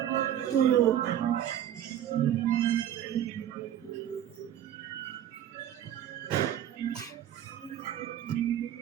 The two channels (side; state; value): left; quieter; 10.9 dB